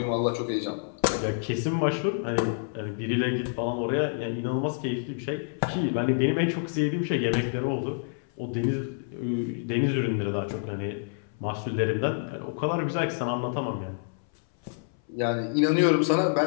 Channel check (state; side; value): silent; right; 59 dB below the other